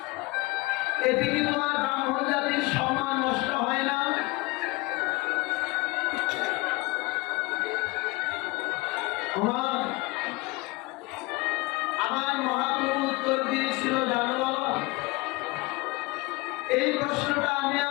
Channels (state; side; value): quieter; right; 23.7 dB